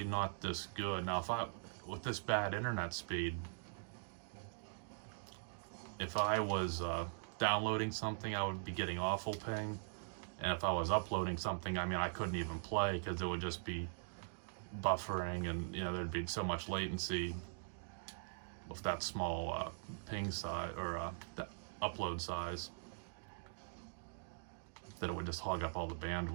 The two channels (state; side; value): silent; left; digital silence